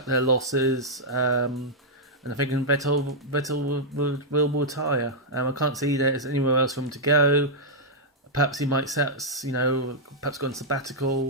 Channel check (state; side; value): normal; both; correlation -0.07